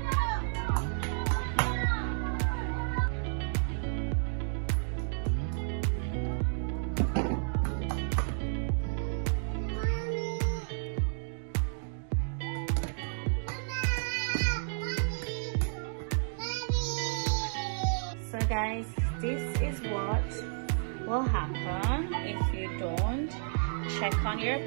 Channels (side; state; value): left; silent; digital silence